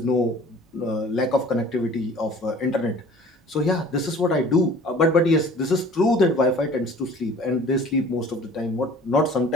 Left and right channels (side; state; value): both; normal; correlation 0.48